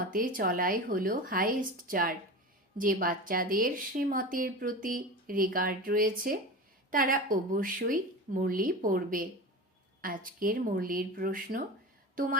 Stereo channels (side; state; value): both; normal; correlation 0.29